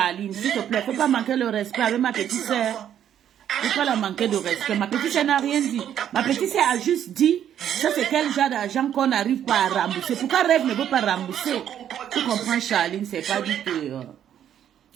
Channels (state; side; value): quieter; left; 10.0 dB